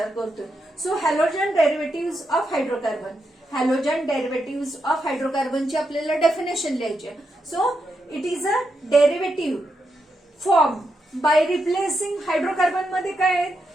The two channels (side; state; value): both; normal; correlation 0.84